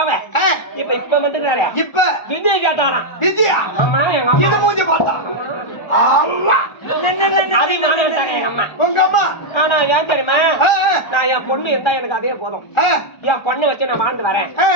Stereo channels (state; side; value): late; right; 1.4 ms